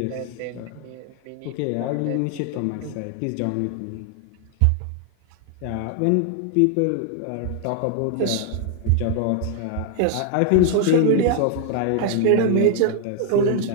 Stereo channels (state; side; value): different; both; correlation 0.00